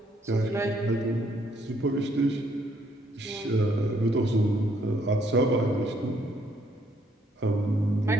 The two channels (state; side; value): normal; both; correlation 0.69